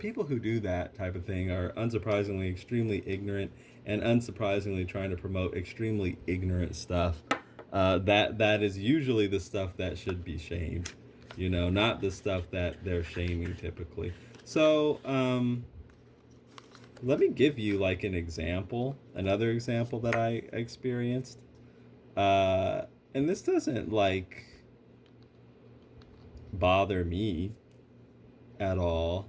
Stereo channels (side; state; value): both; identical; correlation 1.00